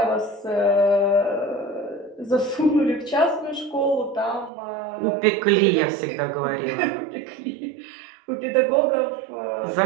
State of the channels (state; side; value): drops out; left; at 4.5 s